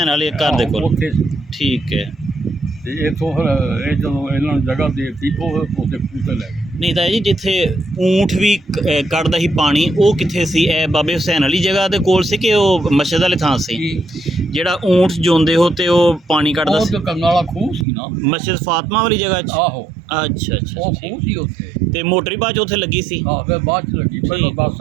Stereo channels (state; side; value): drops out; left; at 17.9 s